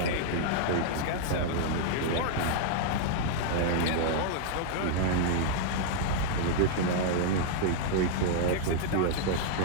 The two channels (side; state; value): both; different; correlation -0.01